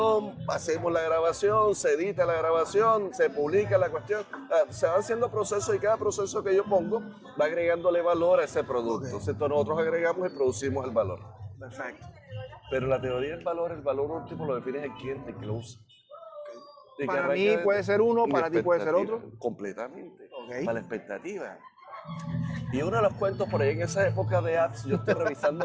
hacemos la grabación, se edita la grabación, se publica la cuestión, se van haciendo procesos y cada proceso que yo pongo va agregándole valor a ese producto. Entonces nosotros agregamos y producimos el valor. Perfecto. Pero la teoría del valor, el valor último lo define el cliente que lo usa. Para mí puede ser uno, para ti puede ser otro. Completamente. Para la expectativa. Y uno de los cuentos por ahí en esa época de apps, yo estoy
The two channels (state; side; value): identical; both; correlation 1.00